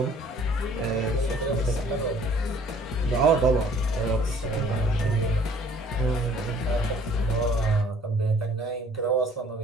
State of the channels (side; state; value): both; normal; correlation 0.56